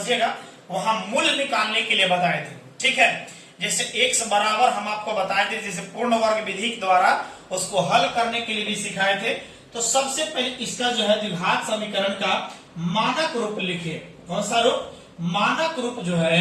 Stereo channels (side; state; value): both; identical; correlation 1.00